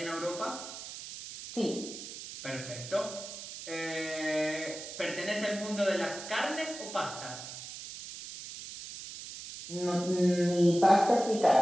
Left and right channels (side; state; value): right; noise; hiss, 11 dB below the sound